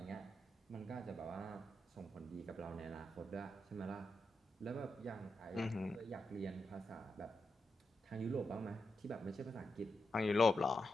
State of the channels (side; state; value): both; normal; correlation 0.86